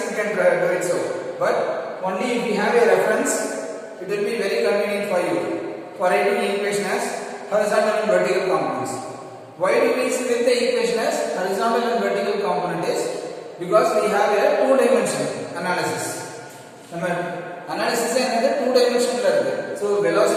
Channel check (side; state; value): both; identical; correlation 1.00